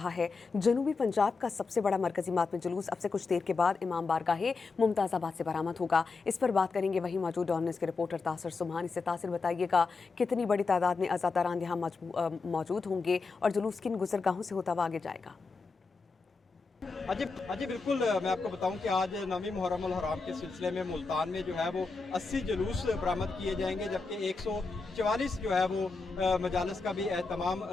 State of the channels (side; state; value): right; quieter; 4.2 dB